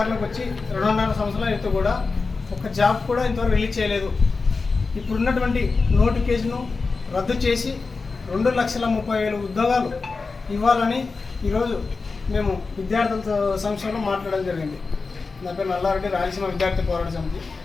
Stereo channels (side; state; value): right; quieter; 4.2 dB